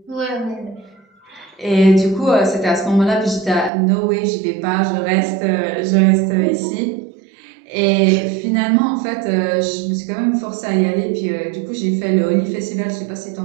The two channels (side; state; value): left; drops out; at 3.7 s